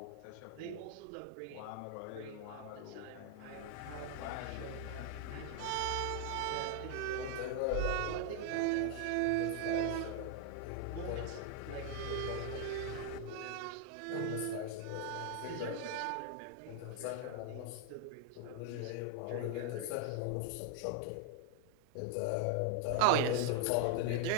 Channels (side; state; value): both; different; correlation 0.00